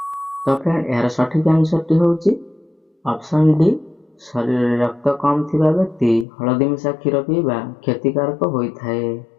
तो फ्रेंड यार सठिक आंसर टी होची ऑप्शन डी शरीर रक्त कम थिबा व्यक्ति हळदी मिसा क्षीर पीबा क्षतिकारक होइथाय।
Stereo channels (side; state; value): right; drops out; at 6.2 s